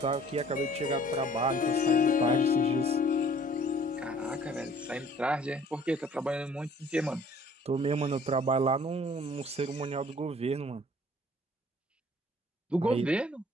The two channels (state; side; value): normal; both; correlation 0.55